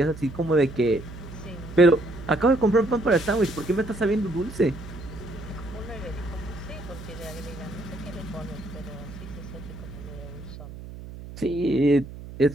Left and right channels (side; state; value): right; noise; hum, 13 dB below the sound